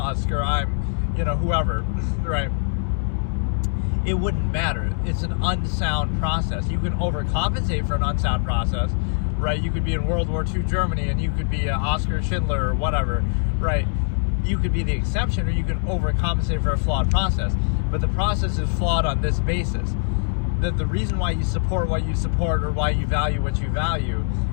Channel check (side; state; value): right; silent; digital silence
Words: or I'm, you know, whoever, right? It wouldn't matter. It's an unsound process. You can overcompensate for an unsound process, right? You could be in World War II Germany and you could be Oscar Schindler or whatever, right? You could be the exception, or you can overcompensate for a flawed process. But the process is flawed on this basis. That the reason why you support what you support or why you value what you value